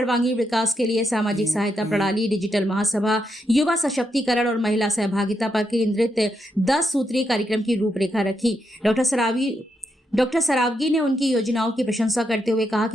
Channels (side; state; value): both; normal; correlation 0.82